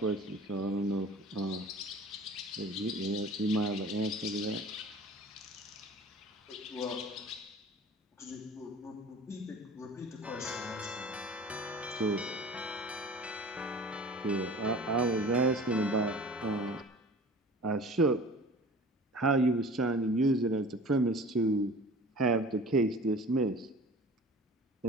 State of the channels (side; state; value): both; normal; correlation 0.42